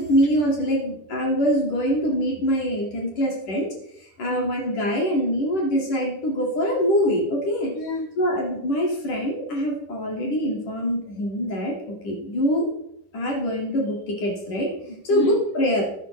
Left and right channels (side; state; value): right; late; 10 ms